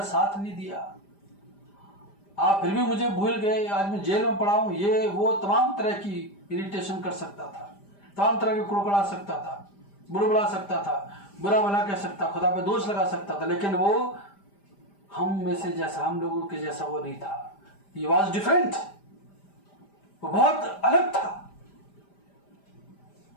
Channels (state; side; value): late; right; 5.0 ms